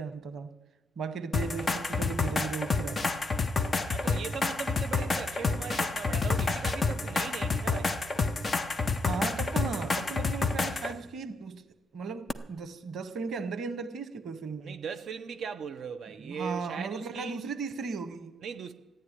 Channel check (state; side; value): normal; both; correlation 0.77